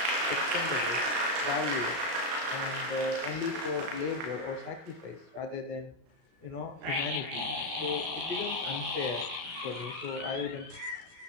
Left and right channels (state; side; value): late; left; 35 ms